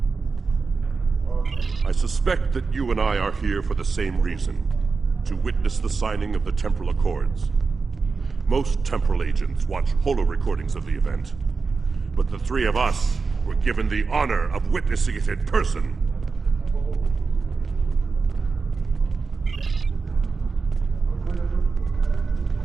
I suspect that you and I are here for the same reason, to witness the signing of the Temporal Accords. Most temporal agents watch holo recordings of the event, but the three of us were given the honor of witnessing it in person.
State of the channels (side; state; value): left; quieter; 4.6 dB